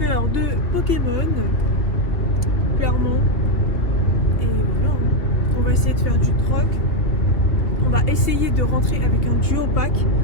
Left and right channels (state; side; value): late; right; 3.0 ms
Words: de Pokémon, clairement. Et voilà, on va essayer de faire du troc. On va essayer de rentrer avec un duo pack